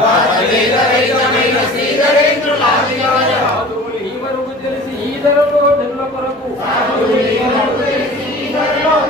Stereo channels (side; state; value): both; normal; correlation 0.42